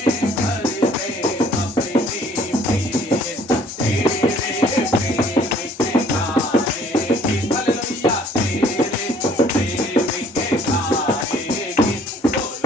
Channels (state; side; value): normal; both; correlation 0.58